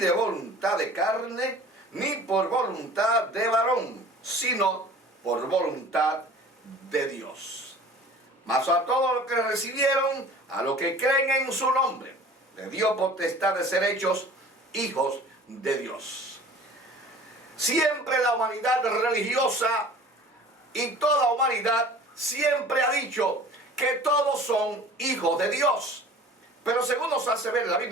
voluntad de carne, ni por voluntad de varón, sino por voluntad de Dios. Mas a todos los que recibieron, a los que creen en su nombre, le dio potestad de ser hechos hijos de Dios. Siempre la humanidad religiosa y toda humanidad siempre ha dicho que todos son hijos de Dios. Pero según nos hace ver la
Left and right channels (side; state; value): both; normal; correlation 0.45